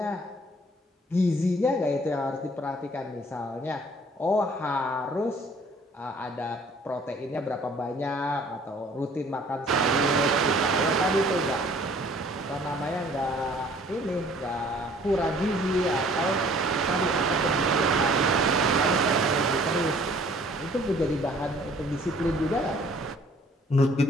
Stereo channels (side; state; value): both; normal; correlation 0.56